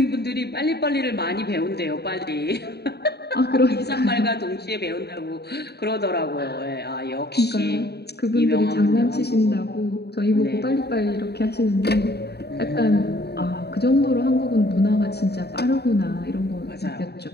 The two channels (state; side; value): late; right; 0.48 ms